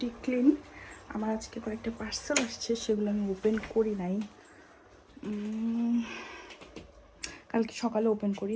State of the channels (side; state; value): both; identical; correlation 1.00